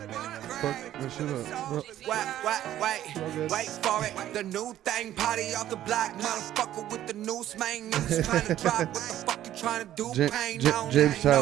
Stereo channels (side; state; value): left; quieter; 12.5 dB